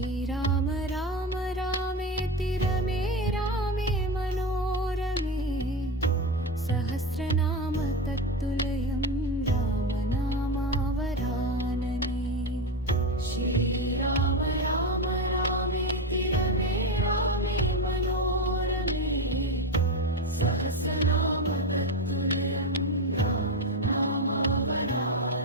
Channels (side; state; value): both; normal; correlation 0.17